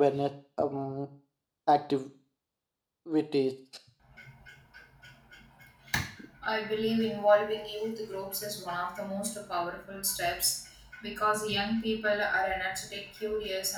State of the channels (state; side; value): identical; both; correlation 1.00